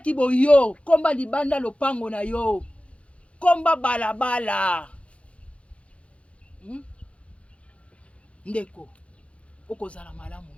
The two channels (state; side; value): late; right; 0.062 ms